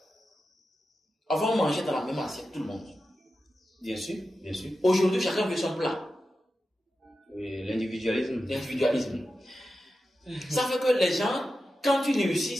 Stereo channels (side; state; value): both; normal; correlation 0.91